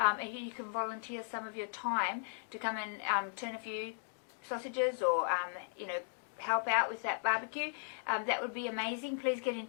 you can volunteer some of your time to come and turn a few sausages or, help out with that barbecue, that would be amazing. Please get in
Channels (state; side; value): silent; right; digital silence